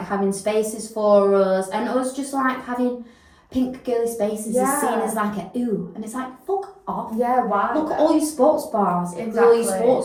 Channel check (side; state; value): both; identical; correlation 1.00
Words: having spaces for us, and us just like having pink girly spaces is seen as like a ooh, and it's like fuck off. Yeah, why? Look at all your sports bars, exactly. All your